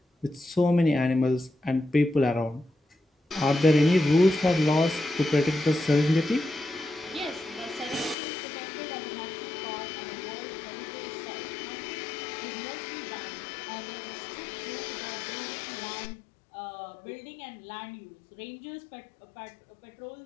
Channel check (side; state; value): right; drops out; at 8.2 s